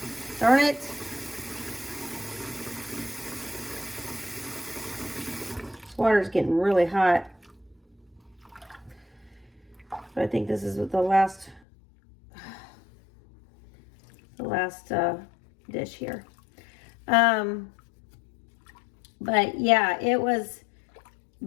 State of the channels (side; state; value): right; drops out; at 11.6 s